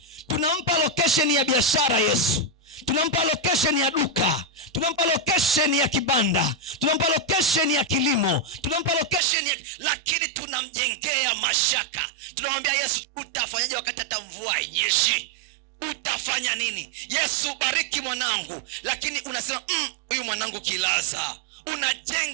Tunampa location ya biashara Yesu, tunampa location ya duka, tunampa location ya kibanda, tunampa location ya kilimo, tunampa location ya, lakini tunamjengea mashaka. Tunamwambia Yesu, utafanyaje wakati hata mvua hainyeshi? Utafanya nini? Yesu, bariki mwanangu. Lakini unasema huyu mwanangu kilaza.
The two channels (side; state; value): left; drops out; at 9.2 s